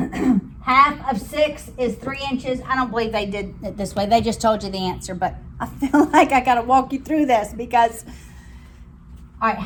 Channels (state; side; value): identical; both; correlation 1.00